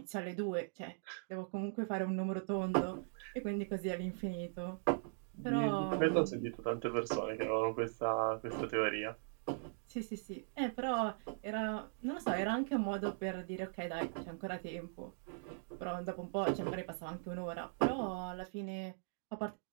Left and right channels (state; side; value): silent; left; digital silence